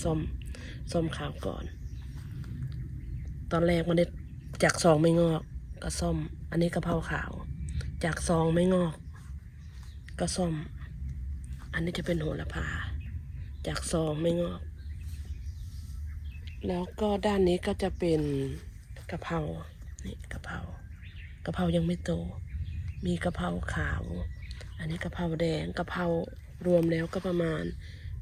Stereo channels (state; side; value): identical; both; correlation 1.00